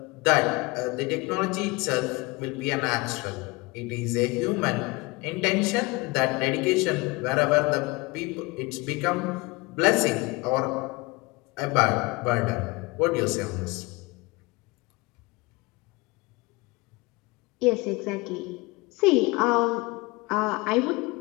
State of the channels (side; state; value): right; quieter; 24.2 dB